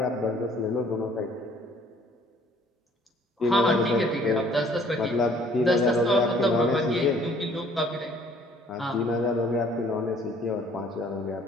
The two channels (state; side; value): normal; both; correlation 0.58